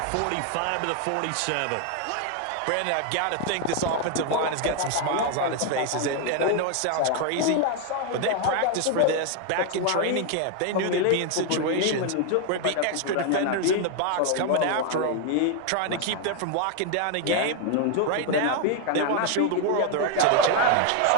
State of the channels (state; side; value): different; both; correlation 0.01